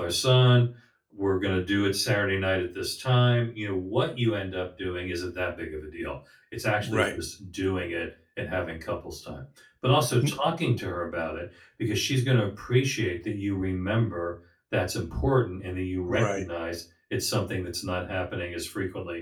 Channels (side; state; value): both; identical; correlation 1.00